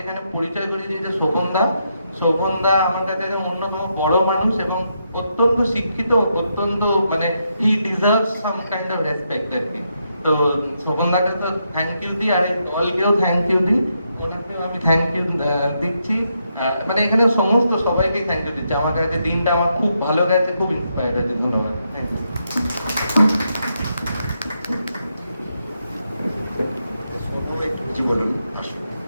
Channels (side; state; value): both; inverted; correlation -0.80